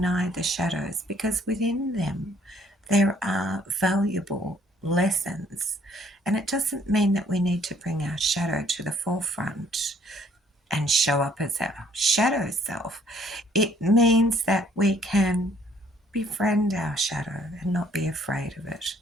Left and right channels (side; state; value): both; normal; correlation 0.62